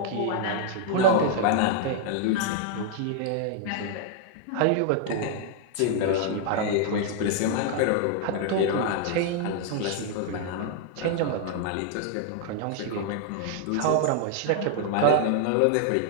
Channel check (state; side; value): different; both; correlation 0.00